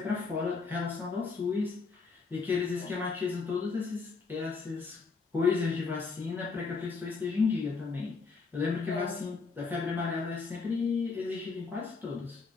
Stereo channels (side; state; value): right; quieter; 4.6 dB